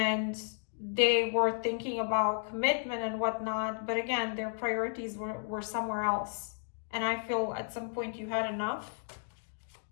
they were thinking about commitment and whatnot, but again, their priorities were somewhere else. And I feel at some point you had enough.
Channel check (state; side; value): silent; right; digital silence